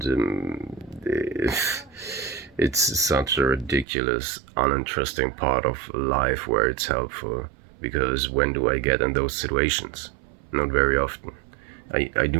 it's such a ridiculous, uninteresting part of life where it's helpful. Because when do I get in those situations? Not very often. I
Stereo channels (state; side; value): drops out; left; at 3.9 s